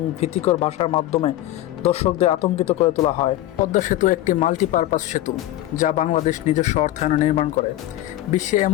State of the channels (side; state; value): right; quieter; 14.6 dB